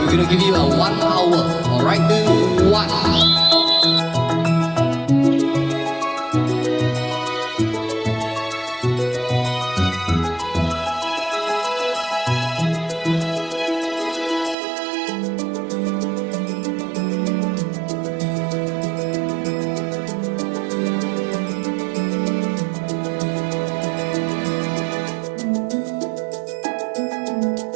We're gonna give you a 1 hour. Alright, 2, 1.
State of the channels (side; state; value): left; drops out; at 14.6 s